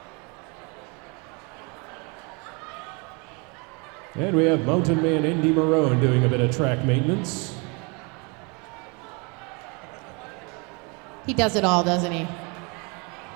And we have Mountain Man Indy Marone doing a bit of track maintenance. He does it all, doesn't he?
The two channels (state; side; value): quieter; left; 31.2 dB